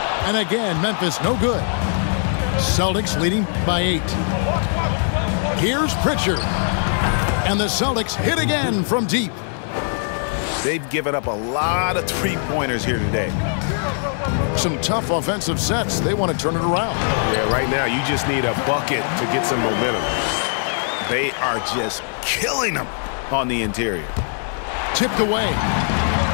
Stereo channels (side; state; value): right; silent; 61 dB below the other